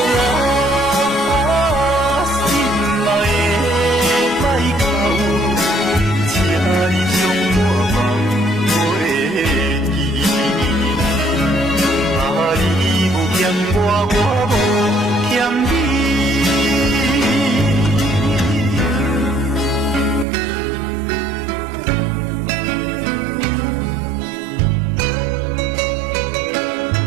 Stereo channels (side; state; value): left; drops out; at 20.2 s